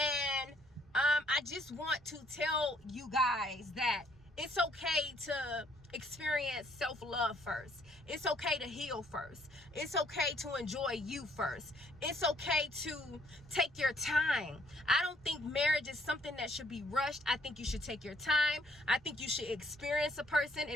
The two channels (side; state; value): both; normal; correlation 0.66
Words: I just want to tell you guys that it's okay to experience self-love first. It's okay to heal first. It's okay to enjoy you first. It's okay to take your time. I don't think marriage is something that should be rushed. I think you should take your time. I think you should experience a person